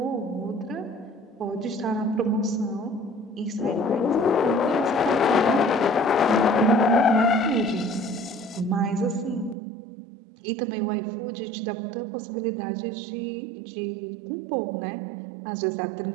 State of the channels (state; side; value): drops out; left; at 9.6 s